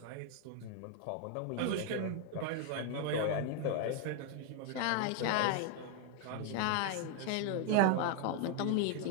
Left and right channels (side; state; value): both; different; correlation 0.00